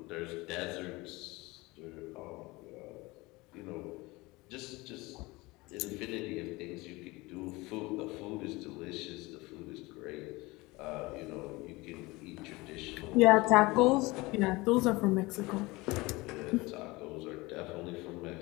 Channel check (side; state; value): right; quieter; 22.4 dB